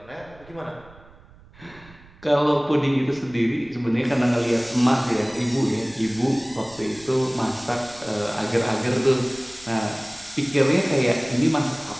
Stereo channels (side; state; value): right; noise; rumble, 24 dB below the sound